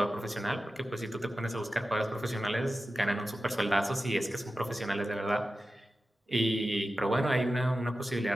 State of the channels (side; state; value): both; normal; correlation 0.93